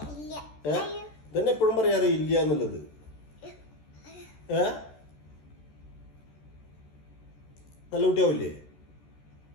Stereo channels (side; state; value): right; late; 14 ms